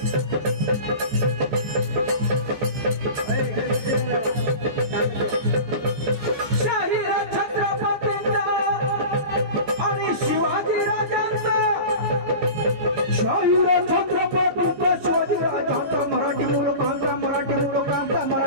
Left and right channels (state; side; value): late; left; 14 ms